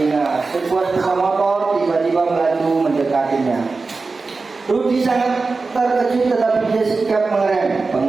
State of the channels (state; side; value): quieter; left; 4.0 dB